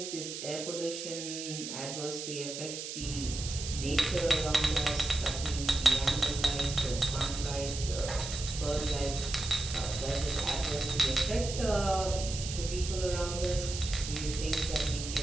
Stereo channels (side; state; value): right; noise; hiss, 7 dB below the sound